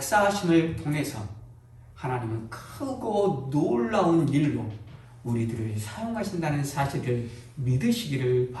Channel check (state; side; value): identical; both; correlation 1.00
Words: 통해서 하나님은 크고 놀라운 일로 우리들을 사용하신다는 사실을 믿으시기를